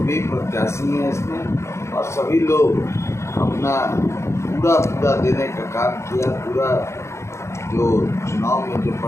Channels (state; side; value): late; right; 0.13 ms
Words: प्रत्याशी हैं इसमें, और सभी लोग अपना पूरा देने का काम किया। पूरा जो चुनाव में जो